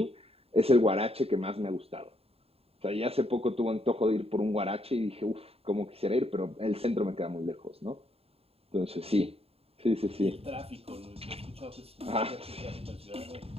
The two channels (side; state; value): left; late; 0.29 ms